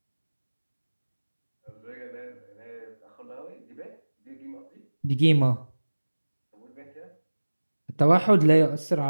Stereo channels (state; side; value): inverted; both; correlation -1.00